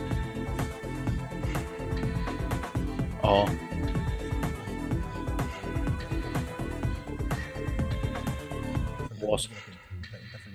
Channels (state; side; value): identical; both; correlation 1.00